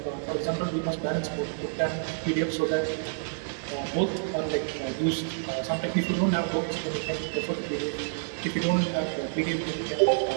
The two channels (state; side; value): silent; left; digital silence